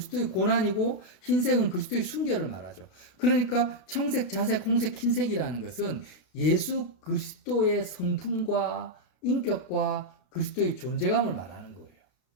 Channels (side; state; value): right; late; 32 ms